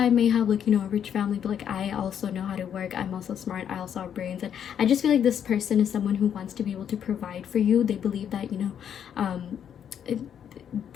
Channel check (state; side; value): quieter; right; 8.8 dB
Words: may have like, you know, a rich family, but like I also know how to work, I'm also smart, I also have brains. And I just feel like this person is someone who wants to be able to provide for you. They believe that, you know,